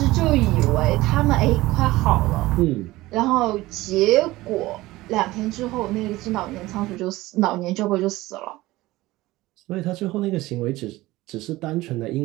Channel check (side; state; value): left; quieter; 18.5 dB